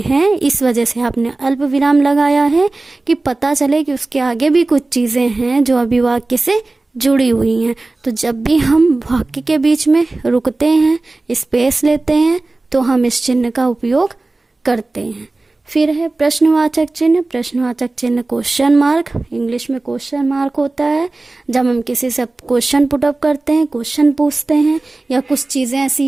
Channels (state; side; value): quieter; left; 3.2 dB